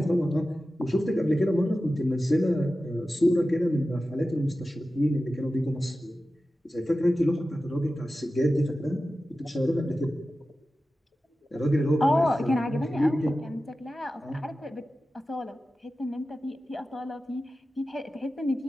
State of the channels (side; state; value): both; normal; correlation 0.94